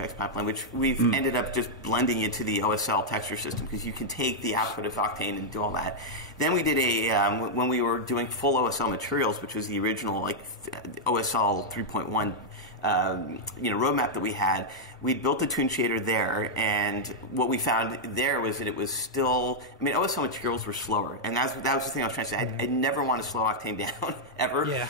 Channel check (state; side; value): normal; both; correlation -0.04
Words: pipeline, which we've ended up just blending into the OSL texture system because you can take the output of Octane and do all that. Then we did when we were doing full OSL materials, which was the original OSL 3.1 roadmap that we had. We built a Tune Shader there, and what we found there was that it was still, OSL materials were slower, and that was the thing I was trying to say. I never want to slow Octane down, ever. Yeah.